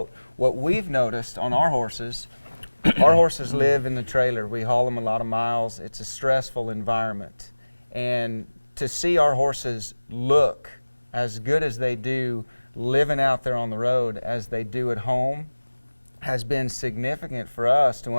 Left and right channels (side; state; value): both; inverted; correlation -1.00